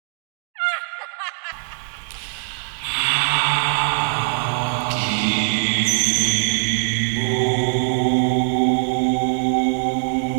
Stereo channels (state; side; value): silent; left; digital silence